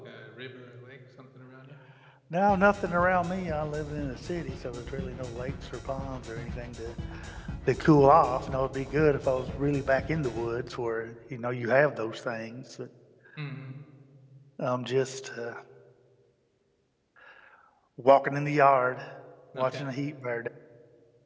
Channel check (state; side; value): identical; both; correlation 1.00